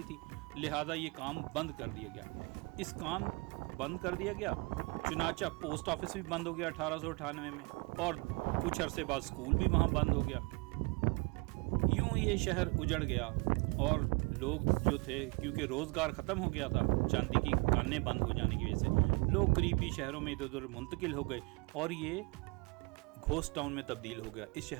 थी। लिहाजा ये काम बंद कर दिया गया। इस काम बंद कर दिया गया, चुनाचा पोस्ट ऑफिस भी बंद हो गया 1898 में और कुछ अरसे बाद स्कूल भी वहाँ बंद हो गया। यूँ ये शहर उजड़ गया और लोग जो थे, क्योंकि रोज़गार ख़त्म हो गया था चांदी की कानें बंद हो जाने की वजह से, लोग करीबी शहरों में इधर उधर मुंतकिल हो गए और ये घोस्ट टाउन में तब्दील हो गया। इस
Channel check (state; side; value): quieter; left; 29.6 dB